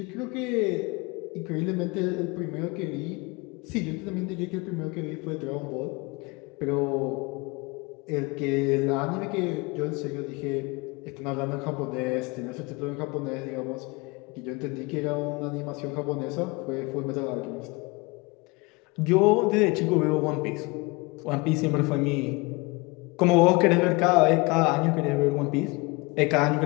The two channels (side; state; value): right; quieter; 26.2 dB